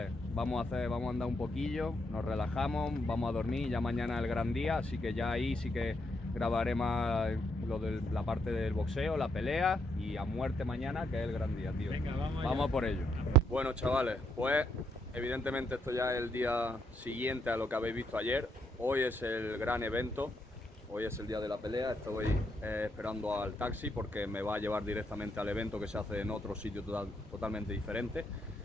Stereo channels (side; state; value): both; normal; correlation 0.76